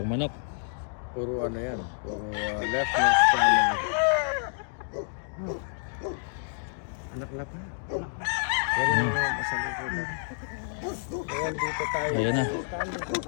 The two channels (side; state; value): right; silent; digital silence